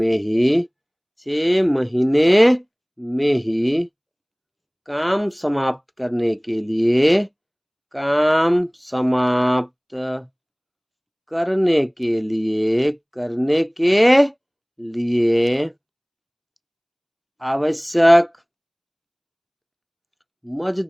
में ही काम समाप्त करने के लिए आवश्यक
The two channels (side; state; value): both; identical; correlation 1.00